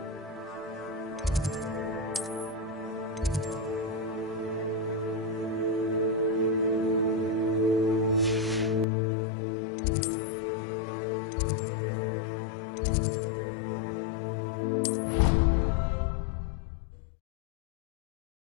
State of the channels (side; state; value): right; drops out; at 8.8 s